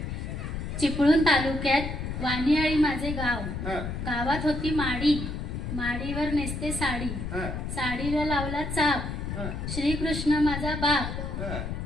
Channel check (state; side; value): noise; left; rumble, 5 dB below the sound